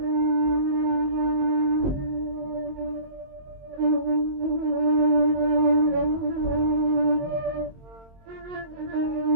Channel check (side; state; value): left; late; 22 ms